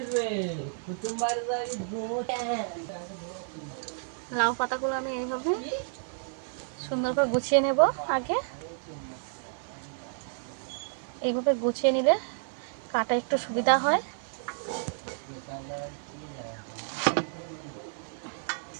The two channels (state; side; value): silent; left; digital silence